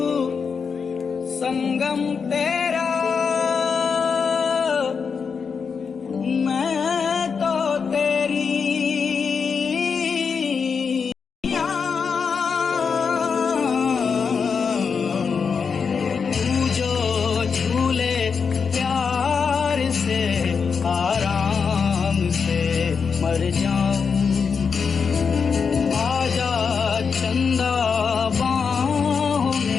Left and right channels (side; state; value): right; quieter; 5.8 dB